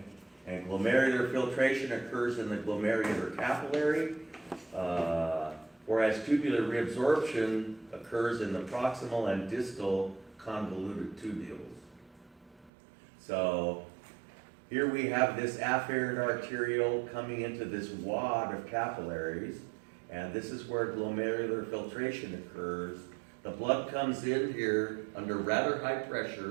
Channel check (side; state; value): left; drops out; at 12.7 s